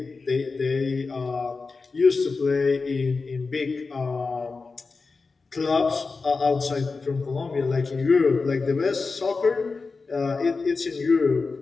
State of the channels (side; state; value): right; quieter; 4.2 dB